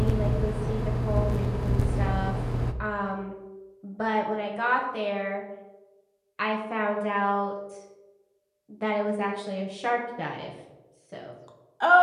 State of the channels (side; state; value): both; identical; correlation 1.00